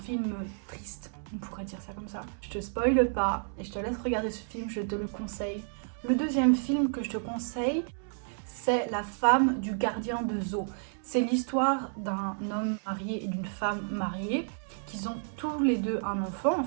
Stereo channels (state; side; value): silent; left; digital silence